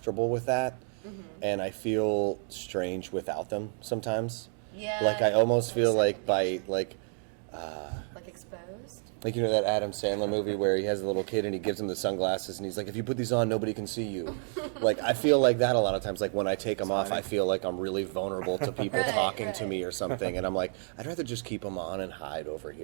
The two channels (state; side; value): silent; left; 58 dB below the other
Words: with that, and I feel strange without them sometimes. Yeah. Like I almost feel like second by nature. like Exposed. like you know that Adam Sandler movie where he has a little kid and he gives him the sunglasses and he's like, if you put these on, nobody can see you. Like I feel like that a lot of times. Like when I take them off, I feel like I'm really vulnerable to people Right, talking to right. me or something, and I'm like, I'd rather just keep them on and hide over